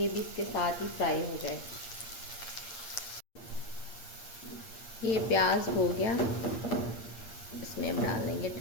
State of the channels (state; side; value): late; right; 8.7 ms